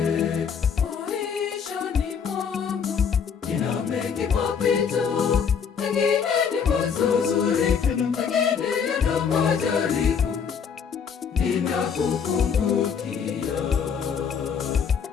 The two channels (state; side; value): quieter; right; 6.7 dB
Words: Maishani mwangu nina mengi mapito, mengine ni mazuri, mengine yana majaribu. Ninakukumbukia